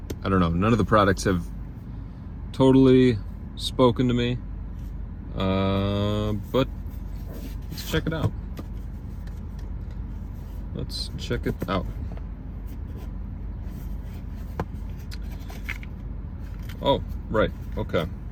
I don't know, none of the products have totally spoken to me, but let's check it out. Let's check it out. Oh, right, okay.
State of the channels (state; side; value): identical; both; correlation 1.00